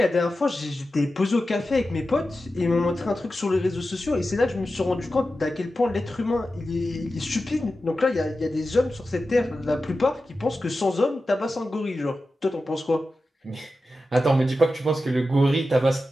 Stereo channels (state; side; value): normal; both; correlation 0.92